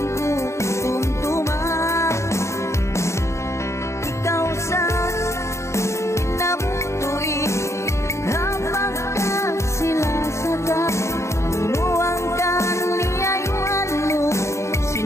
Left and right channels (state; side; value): late; right; 0.14 ms